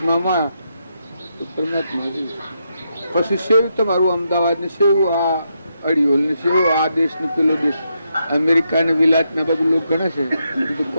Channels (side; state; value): both; inverted; correlation -0.81